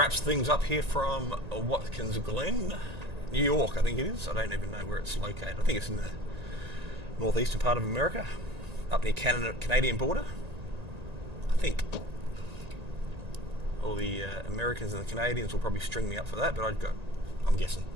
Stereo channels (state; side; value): late; left; 1.9 ms